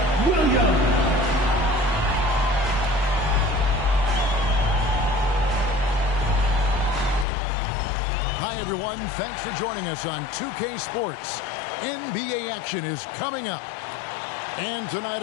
Williams. Hi, everyone. Thanks for joining us on 2K Sports. NBA action is coming up. And tonight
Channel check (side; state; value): right; drops out; at 7.2 s